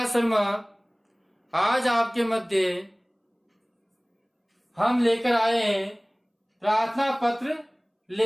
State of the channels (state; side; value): identical; both; correlation 1.00